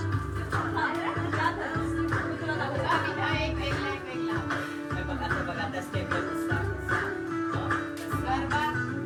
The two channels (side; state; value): both; identical; correlation 1.00